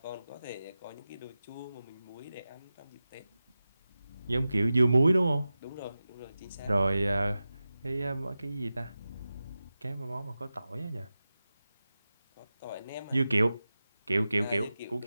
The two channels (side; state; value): both; inverted; correlation -0.94